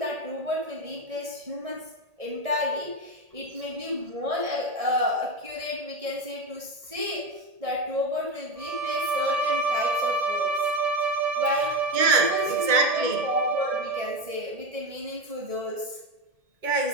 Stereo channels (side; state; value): left; late; 1.8 ms